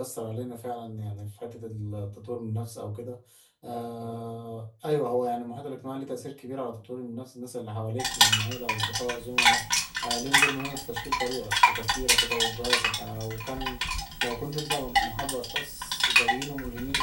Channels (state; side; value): identical; both; correlation 1.00